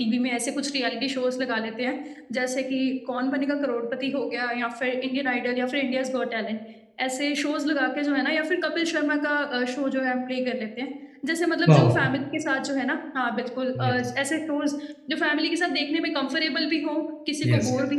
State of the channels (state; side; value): identical; both; correlation 1.00